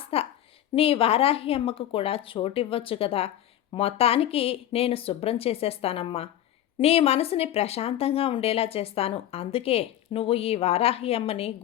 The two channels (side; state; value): right; quieter; 12.1 dB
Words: నీ వారాహి అమ్మకు కూడా చోటివ్వచ్చు కదా! మొత్తానికి నేను శుభ్రం చేసేస్తానమ్మా. నీ మనసుని ప్రశాంతంగా ఉండేలా చేస్తాను. అందుకే నువ్వు ఈ వారాహి అమ్మని